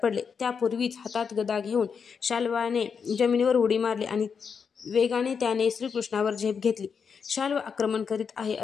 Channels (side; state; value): right; quieter; 6.2 dB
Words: पडले. त्यापूर्वीच हातात गदा घेऊन शाल्वाने जमिनीवर उडी मारली आणि वेगाने त्याने श्रीकृष्णावर झेप घेतली. शाल्व आक्रमण करीत आहे